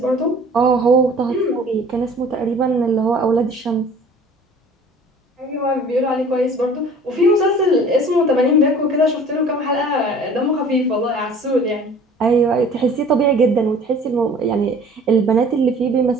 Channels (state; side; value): normal; both; correlation 0.48